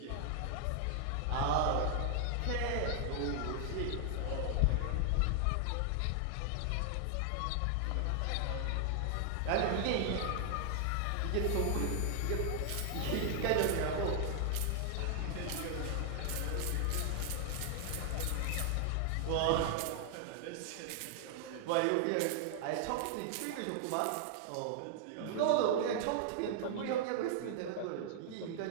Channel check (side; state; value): both; different; correlation 0.00